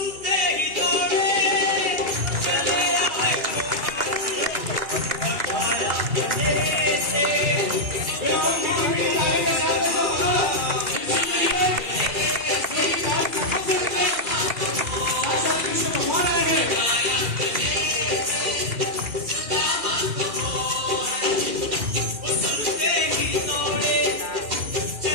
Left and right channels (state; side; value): late; left; 2.3 ms